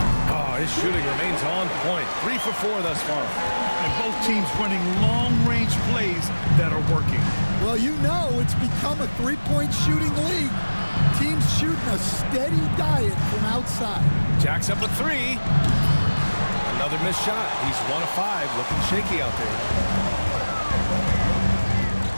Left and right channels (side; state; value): both; inverted; correlation -1.00